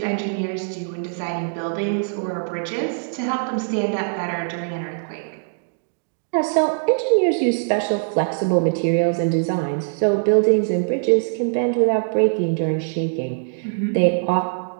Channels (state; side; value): silent; left; digital silence